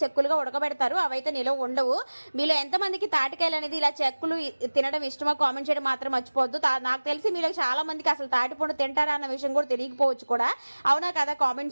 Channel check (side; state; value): both; inverted; correlation -1.00